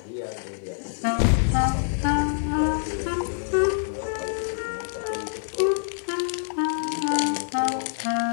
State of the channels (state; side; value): silent; right; digital silence